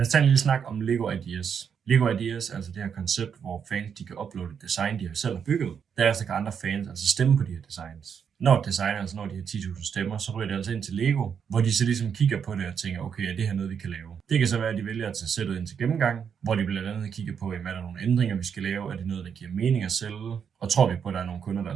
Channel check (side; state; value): left; quieter; 7.3 dB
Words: os tage en lille snak om Lego Ideas. Lego Ideas er altså det her koncept, hvor fans de kan uploade et design, de har selv har bygget. Derefter kan andre fans altså stemme på de her designs. Når et design altså når de her 10.000 stemmer, så ryger det altså ind til Lego, hvor de så ligesom kigger på det og tænker, okay, er det her noget, vi kan lave? Det kan så være, at de vælger at tage sættet ind til gennemgang, hvor de blandt andet kigger på, er der nogle ændringer, vi skal lave? Er det noget, der giver mening at sælge? Og tror vi på, at der er nogle kunder, der